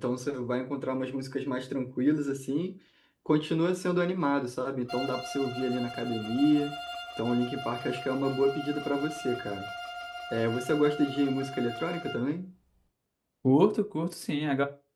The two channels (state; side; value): identical; both; correlation 1.00